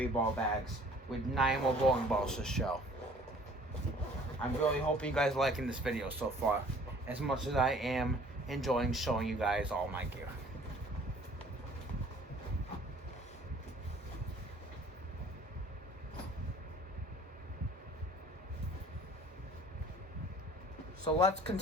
bags with 9 more bowling balls to show. I'm really hoping you guys are liking this video so far, as much as I am enjoying showing you guys all my gear. So let's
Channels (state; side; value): normal; both; correlation 0.53